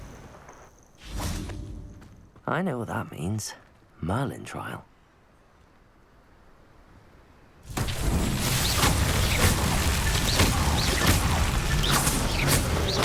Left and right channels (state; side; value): identical; both; correlation 1.00